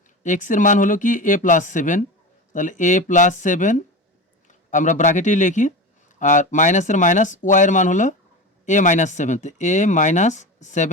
এক্সের মান হলো কি এ প্লাস 7, তাহলে এ প্লাস 7 আমরা ব্র্যাকেটেই লিখি, আর মাইনাসের মাইনাস ওয়াইয়ের মান হলো এ মাইনাস 7, তো এ মাইনাস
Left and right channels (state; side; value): normal; both; correlation 0.26